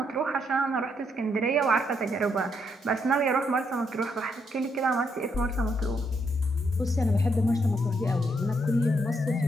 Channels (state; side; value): normal; both; correlation 0.76